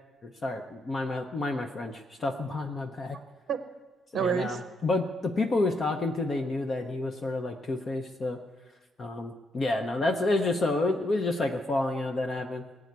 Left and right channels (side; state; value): both; normal; correlation 0.77